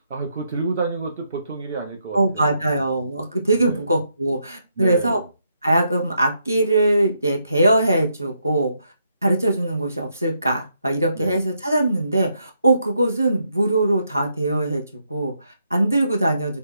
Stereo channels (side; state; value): both; inverted; correlation -0.78